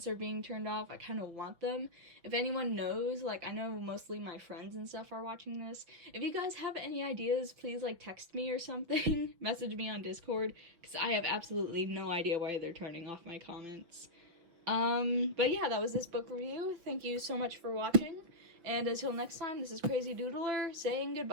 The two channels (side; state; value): left; late; 6.2 ms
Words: are being turned off. I kind of want them. If anyone knows, like, I know mostly my friends and stuff are watching this. If you guys have any ideas, please, like, text me or something. Message me on Discord, because I have absolutely no idea why they're turning off my comments. But yeah, that was this book review. Thank you so much for watching. And until next time, this is Crazy Doodler saying